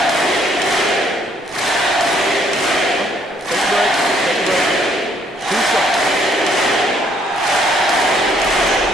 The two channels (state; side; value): normal; both; correlation 0.66